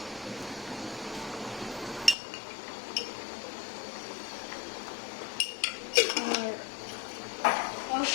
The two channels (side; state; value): right; drops out; at 2.1 s